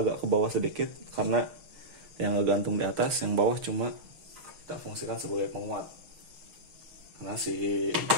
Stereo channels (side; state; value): left; late; 6.4 ms